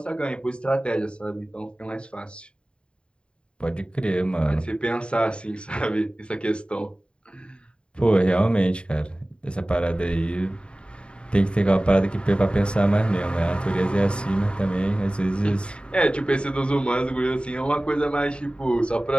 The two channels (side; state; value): right; late; 0.054 ms